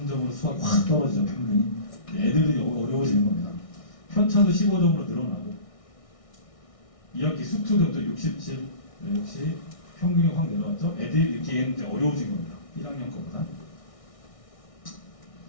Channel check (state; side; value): late; right; 1.6 ms